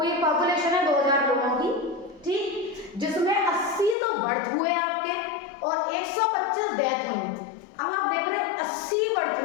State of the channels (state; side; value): drops out; right; at 4.0 s